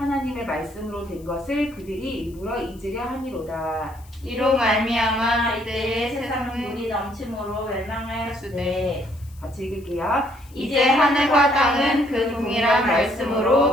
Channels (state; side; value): noise; left; hiss, 27 dB below the sound